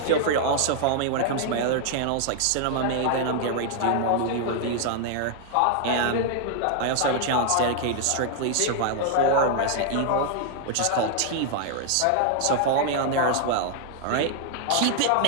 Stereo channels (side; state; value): both; different; correlation 0.00